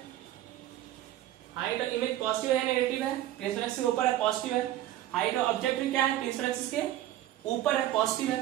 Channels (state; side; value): quieter; left; 13.4 dB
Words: हाइट ऑफ इमेज पॉजिटिव है या नेगेटिव है? प्रिंसिपल एक्सिस के ऊपर है, पॉजिटिव है। हाइट ऑफ ऑब्जेक्ट भी क्या है? प्रिंसिपल एक्सिस के ऊपर है, पॉजिटिव है।